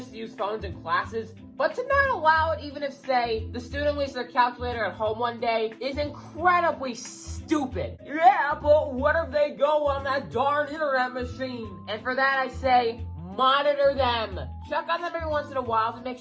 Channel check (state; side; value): identical; both; correlation 1.00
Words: to use phones in classes, but to not allow it even if, say, the student leaves their calculator at home one day is incredibly stupid. Yeah, but what if they go on that darn internet machine? And for that I say, monitor them. Check on them every once in a while to make